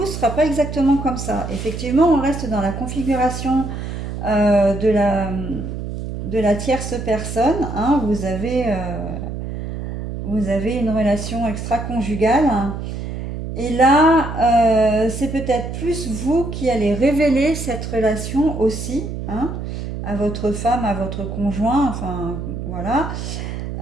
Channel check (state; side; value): noise; right; hum, 6 dB below the sound